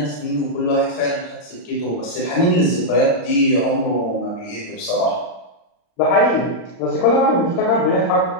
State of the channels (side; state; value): right; late; 38 ms